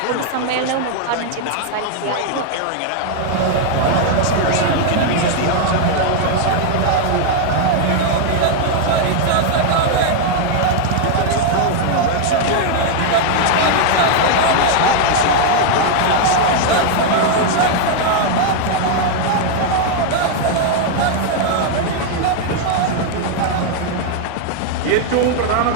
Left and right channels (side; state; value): both; different; correlation 0.00